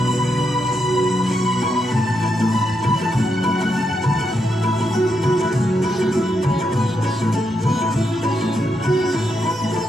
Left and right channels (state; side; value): normal; both; correlation 0.82